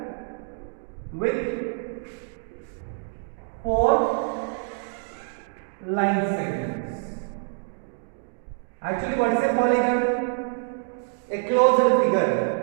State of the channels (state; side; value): silent; left; 61 dB below the other